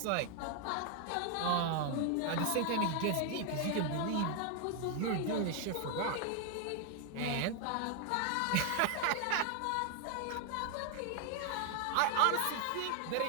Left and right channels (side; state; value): both; different; correlation 0.00